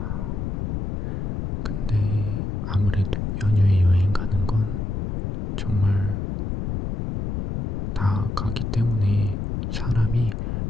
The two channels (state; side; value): noise; left; rumble, 2 dB below the sound